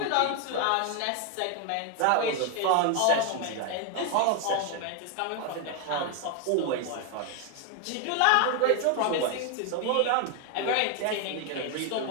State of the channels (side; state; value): both; different; correlation 0.01